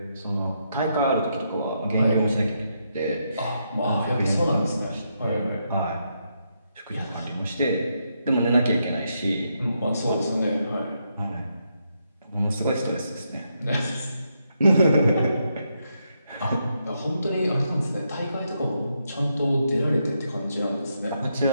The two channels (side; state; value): both; inverted; correlation -0.80